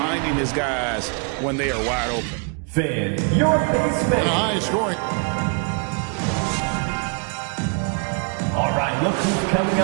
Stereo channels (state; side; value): quieter; left; 36.4 dB